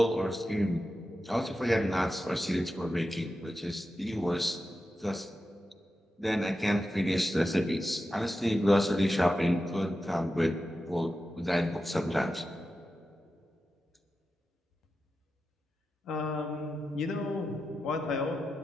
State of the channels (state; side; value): normal; both; correlation 0.91